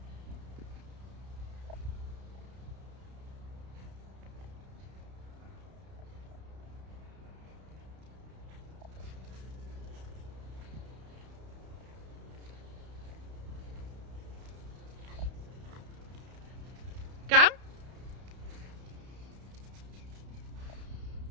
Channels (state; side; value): late; left; 31 ms